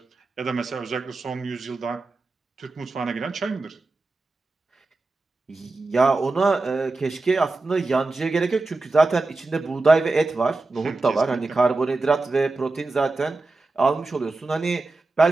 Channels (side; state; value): left; quieter; 3.4 dB